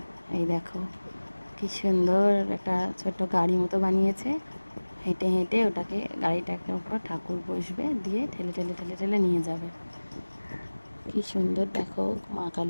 এই দেখো কি সুন্দর একটা ছোট্ট গাড়ি মতো বানিয়েছে। হেঁটে হেঁটে ওটাকে গাড়িটাকে উপর ঠাকুর বসবে, দিয়ে ঠেলে ঠেলে ঠেলে ঠেলে নিয়ে যাবে। কি সুন্দর দেখো মা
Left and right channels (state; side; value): inverted; both; correlation -1.00